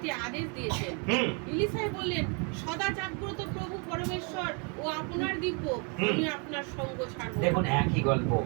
আদেশ দিয়েছেন। ইলিসাই বললেন, সদা জাগ্রত প্রভু পরমেশ্বর ও আপনার দিব্য, আমি আপনার সঙ্গ ছাড়ব। দেখুন একই গল্প।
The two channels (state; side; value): quieter; left; 35.6 dB